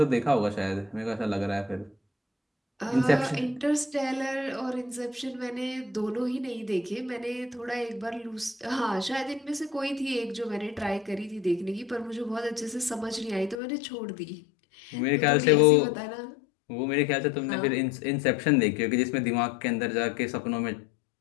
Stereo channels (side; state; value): right; drops out; at 13.6 s